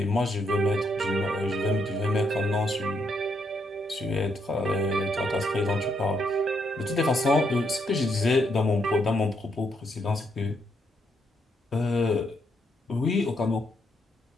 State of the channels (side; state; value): both; normal; correlation 0.76